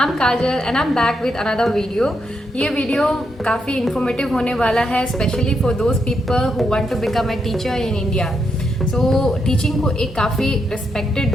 Kajal and I'm back with another video. ये video काफ़ी informative होने वाला है, specially for those people who want to become a teacher in India. So teaching को एक काफ़ी respected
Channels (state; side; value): normal; both; correlation 0.81